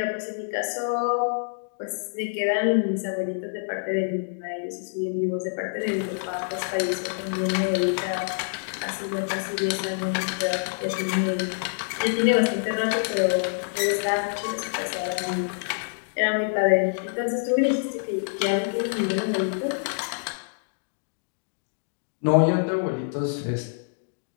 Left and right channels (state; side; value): silent; right; digital silence